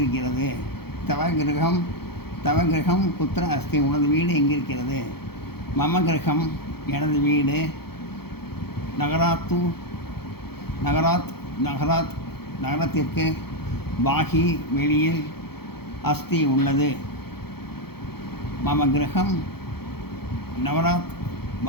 தவ கிரகம் குத்திர அஸ்தி, உனது வீடு எங்கிருக்கிறது. மம கிரகம் எனது வீடு, நகரத்திற்கு, பாகி வெளியில், அஸ்தி உள்ளது. மம கிரகம் நகராத்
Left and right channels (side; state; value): right; late; 0.96 ms